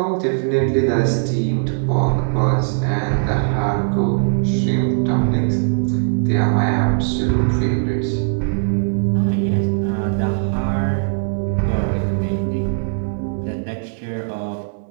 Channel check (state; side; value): silent; left; 63 dB below the other